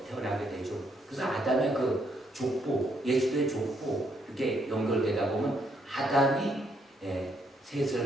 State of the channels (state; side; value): normal; both; correlation 0.73